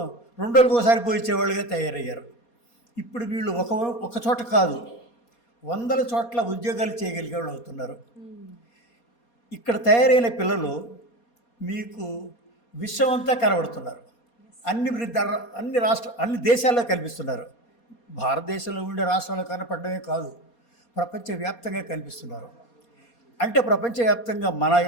2 రోజులకు ఒకసారి పోయించేవాళ్ళుగా తయారయ్యారు. ఇప్పుడు వీళ్ళు ఒక చోట కాదు, 100 చోట్ల ఉద్యోగాలు చేయగలిగే వాళ్ళు అవుతున్నారు. ఇక్కడ తయారైన పిల్లలు మీకు విశ్వమంతా కనబడుతున్నారు. అన్ని దేశాల్లో కనిపిస్తున్నారు. భారతదేశంలో ఉండే రాష్ట్రాల్లో కనపడమే కాదు, ప్రపంచవ్యాప్తంగా కనిపిస్తున్నారు. అంటే ప్రపంచవ్యాప్తంగా మన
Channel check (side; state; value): right; late; 4.2 ms